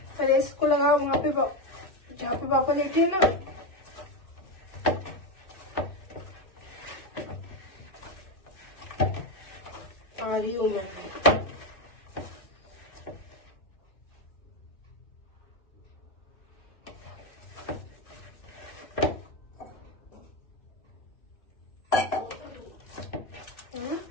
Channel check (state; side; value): late; right; 2.3 ms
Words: को लगा वहां पे जहाँ पे पापा लेटे हैं ना। आ रही हूँ मैं।